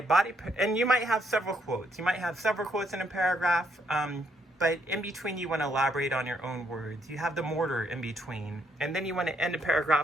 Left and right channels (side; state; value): both; normal; correlation 0.72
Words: and you might have several quotes. You might have several quotes in a paragraph, but in between you want to elaborate on your own words. You have the mortar in between. And then you want to end a